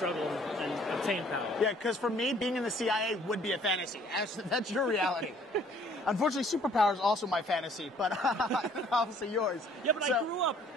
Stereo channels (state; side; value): normal; both; correlation 0.58